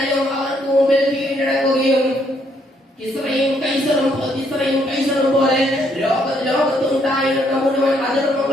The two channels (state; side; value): normal; both; correlation 0.71